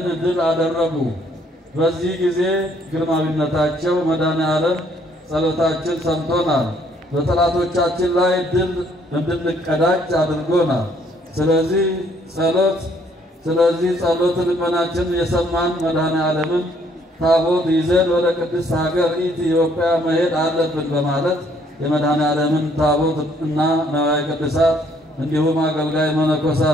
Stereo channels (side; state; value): both; normal; correlation 0.65